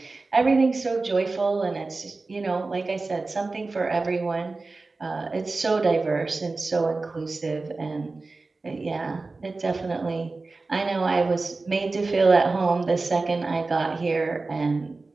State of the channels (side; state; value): left; quieter; 3.6 dB